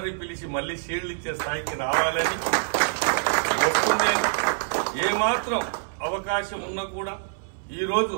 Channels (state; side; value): silent; left; 60 dB below the other